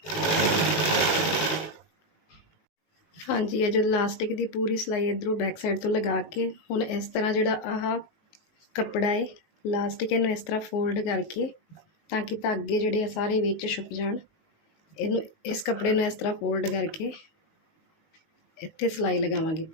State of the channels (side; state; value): right; late; 19 ms